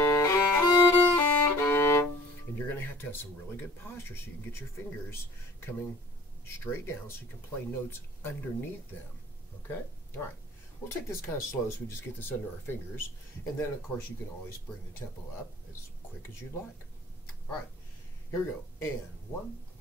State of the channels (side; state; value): both; normal; correlation 0.49